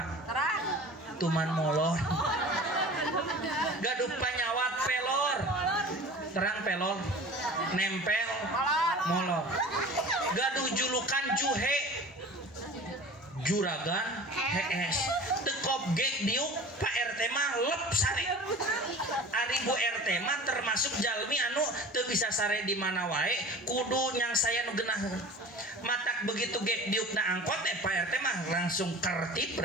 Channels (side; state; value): both; normal; correlation 0.39